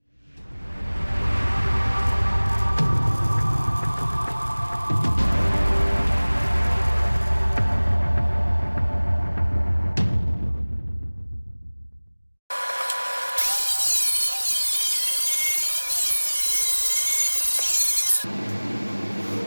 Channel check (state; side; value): inverted; both; correlation -1.00